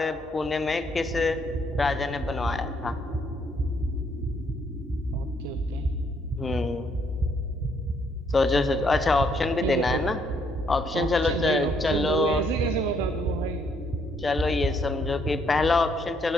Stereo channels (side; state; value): both; normal; correlation 0.70